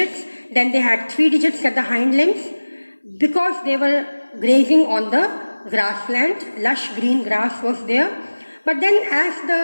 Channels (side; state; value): both; inverted; correlation -1.00